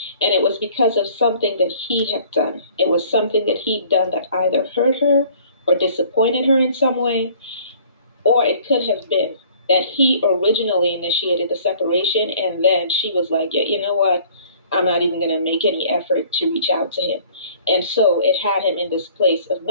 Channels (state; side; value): inverted; both; correlation -0.53